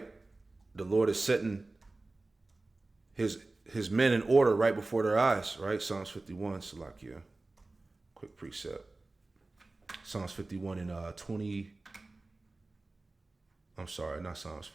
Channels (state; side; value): quieter; left; 3.2 dB